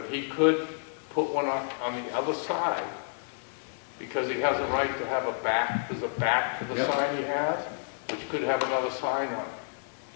he could put one on the other side, because he has a right to have a back, there's a back to the Yep. sign he has, which could have another sign on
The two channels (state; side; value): silent; right; digital silence